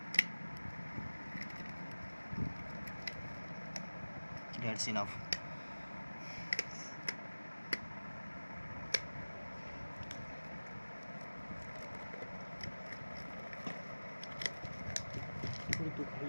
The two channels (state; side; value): inverted; both; correlation -1.00